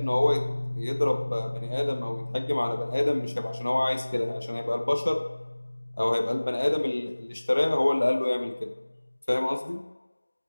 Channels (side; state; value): both; inverted; correlation -1.00